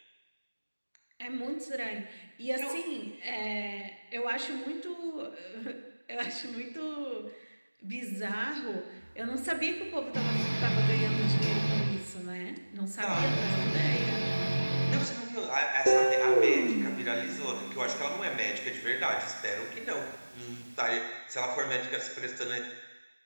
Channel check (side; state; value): both; inverted; correlation -1.00